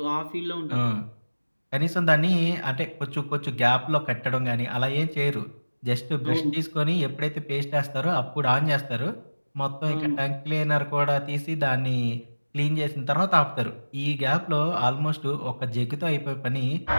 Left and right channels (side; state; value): both; inverted; correlation -1.00